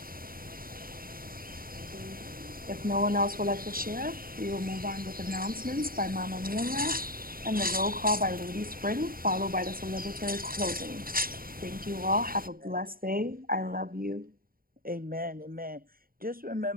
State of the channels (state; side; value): late; left; 0.42 ms